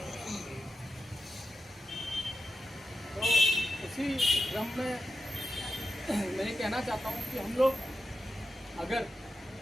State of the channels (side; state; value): both; normal; correlation 0.89